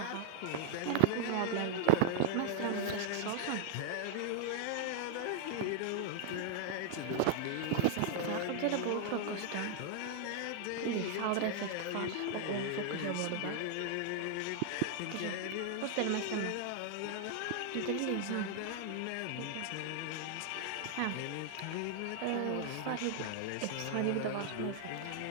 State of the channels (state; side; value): different; both; correlation 0.00